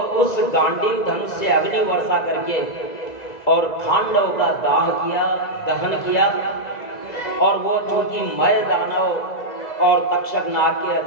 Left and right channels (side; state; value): right; late; 2.0 ms